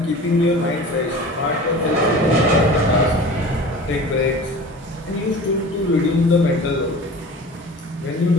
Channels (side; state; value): both; normal; correlation 0.39